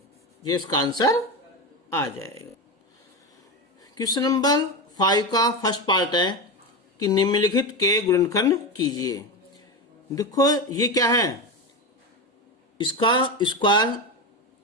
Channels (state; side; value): normal; both; correlation 0.18